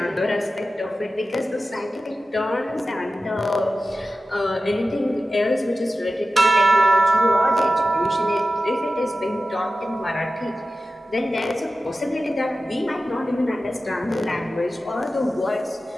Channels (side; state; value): both; normal; correlation 0.94